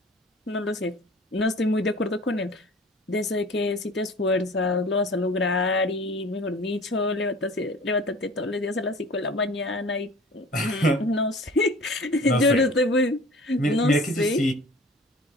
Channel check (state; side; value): normal; both; correlation 0.44